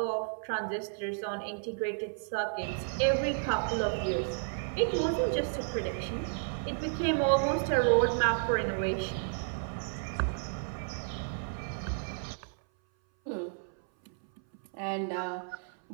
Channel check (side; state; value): left; silent; 56 dB below the other